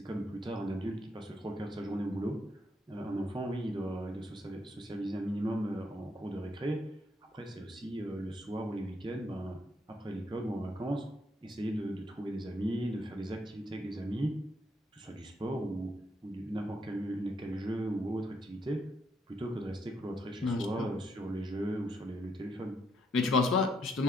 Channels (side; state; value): both; normal; correlation 0.74